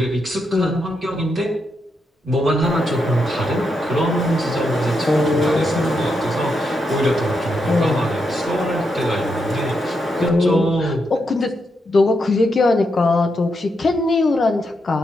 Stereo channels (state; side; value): normal; both; correlation 0.82